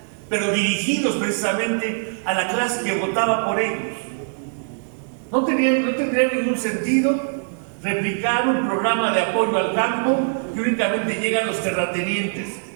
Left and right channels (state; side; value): silent; left; digital silence